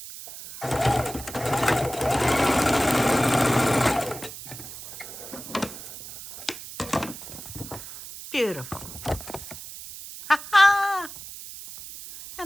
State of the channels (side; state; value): right; noise; hiss, 13 dB below the sound